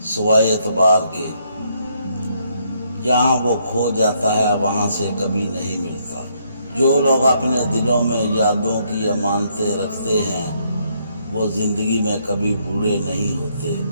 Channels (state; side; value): inverted; both; correlation -0.72